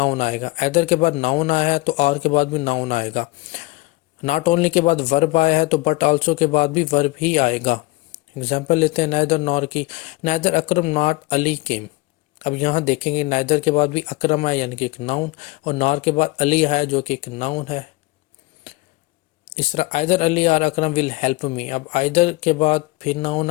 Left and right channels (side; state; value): right; quieter; 21.6 dB